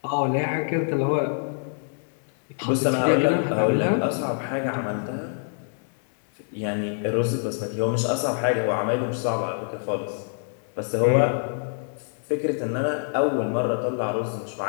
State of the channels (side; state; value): right; silent; digital silence